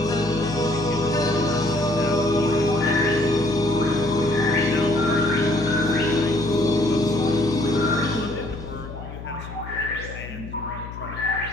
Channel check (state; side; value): noise; left; hum, 12 dB below the sound